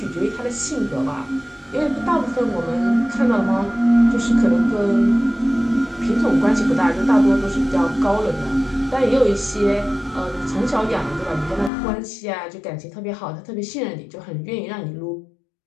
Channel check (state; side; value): drops out; right; at 11.7 s